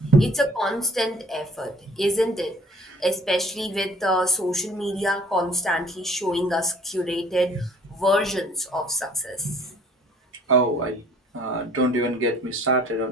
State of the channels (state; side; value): normal; both; correlation 0.54